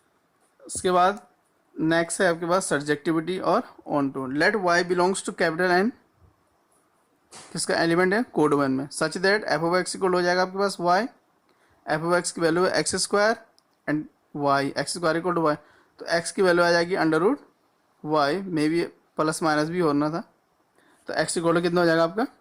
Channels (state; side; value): identical; both; correlation 1.00